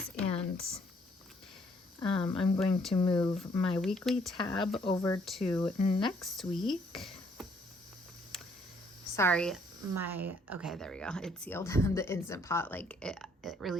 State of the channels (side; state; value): both; normal; correlation 0.66